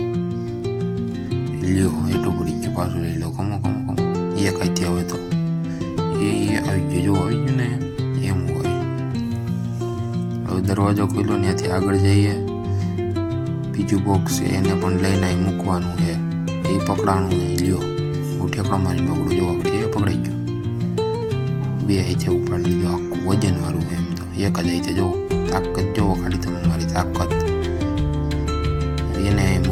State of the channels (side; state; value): both; identical; correlation 1.00